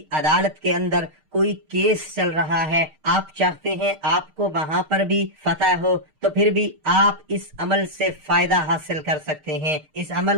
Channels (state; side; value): late; left; 6.5 ms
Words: عدالت کے اندر کوئی کیس چل رہا ہے، آپ چاہتے ہیں آپ کو وہاں پر بھی فتح ہو، تو پھر بھی آپ اس عمل سے فائدہ حاصل کر سکتے ہیں، اس